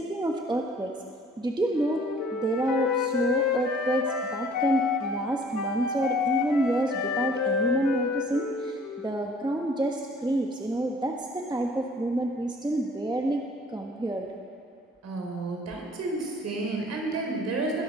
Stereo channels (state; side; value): normal; both; correlation 0.54